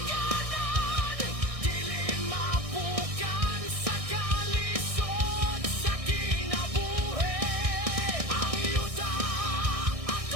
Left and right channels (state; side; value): late; left; 1.6 ms